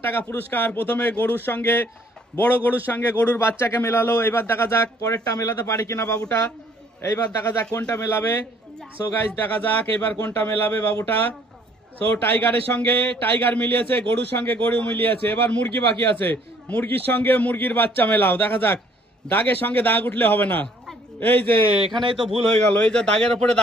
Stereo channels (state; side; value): normal; both; correlation 0.61